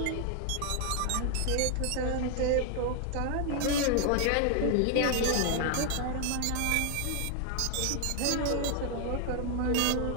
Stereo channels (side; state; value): both; different; correlation 0.00